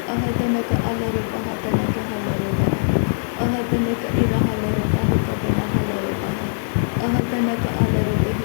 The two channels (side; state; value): right; silent; 65 dB below the other